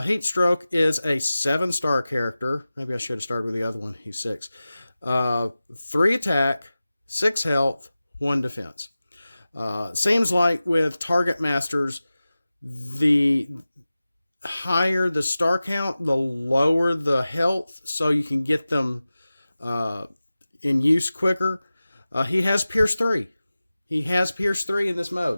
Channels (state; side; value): inverted; both; correlation -0.96